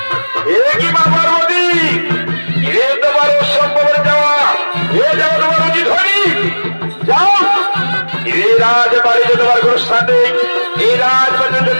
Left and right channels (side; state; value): both; inverted; correlation -1.00